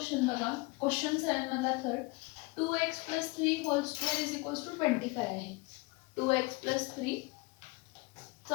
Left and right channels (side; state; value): right; quieter; 25.4 dB